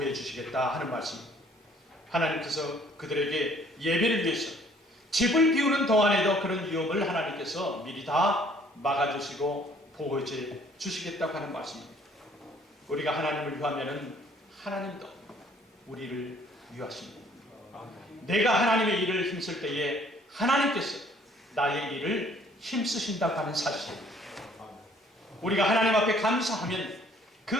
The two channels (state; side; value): normal; both; correlation 0.59